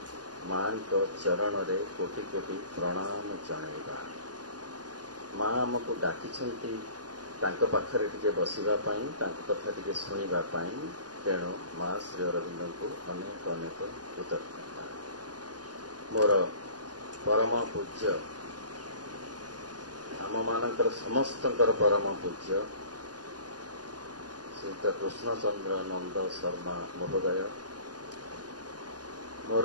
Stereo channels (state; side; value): late; left; 0.69 ms